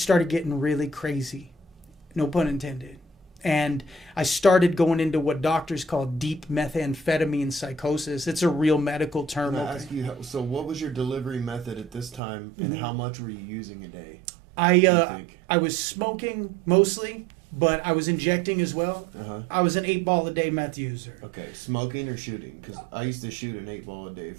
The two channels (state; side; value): drops out; left; at 12.2 s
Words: getting really crazy, no pun intended. And I started going into what doctors call deep methamphetamine psychosis. It's a real medical term. Can I ask you, so what was your delivery method at this time, and how much were you using a day? I was smoking mostly, but I was injecting as well. I was an 8-ball a day meth user. Okay, smoking or shooting? Because I used to shoot an 8-ball a day